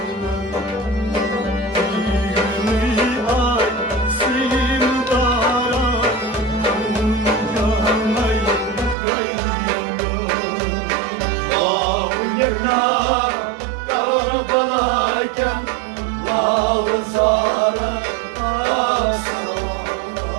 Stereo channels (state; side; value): drops out; left; at 9.0 s